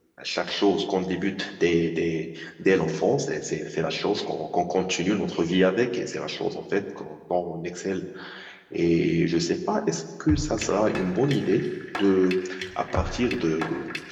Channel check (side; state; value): both; identical; correlation 1.00